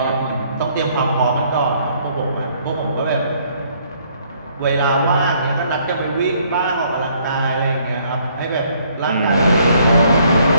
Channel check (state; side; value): inverted; both; correlation -0.65